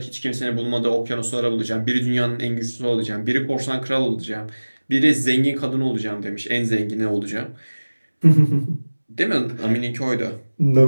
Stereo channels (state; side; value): inverted; both; correlation -1.00